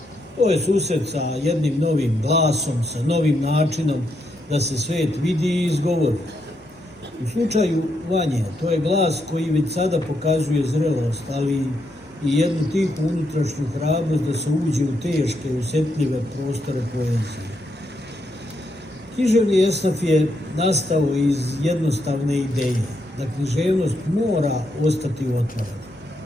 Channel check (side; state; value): both; normal; correlation 0.79